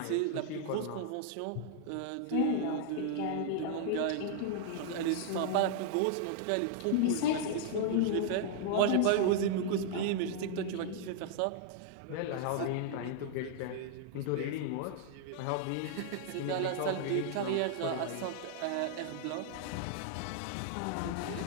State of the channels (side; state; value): both; different; correlation -0.01